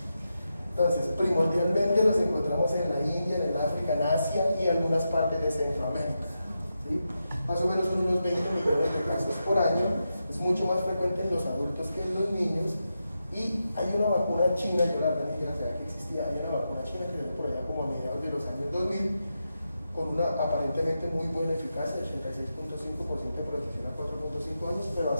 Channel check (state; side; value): inverted; both; correlation -0.88